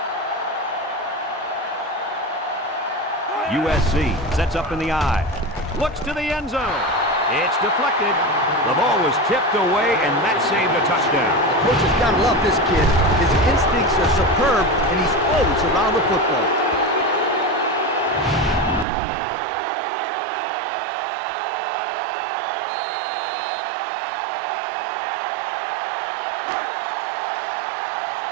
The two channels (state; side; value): drops out; left; at 18.9 s